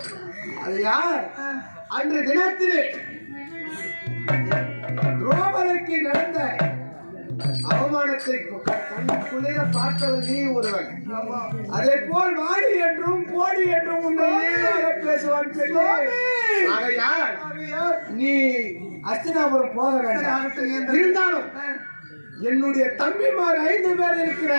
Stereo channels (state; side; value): inverted; both; correlation -1.00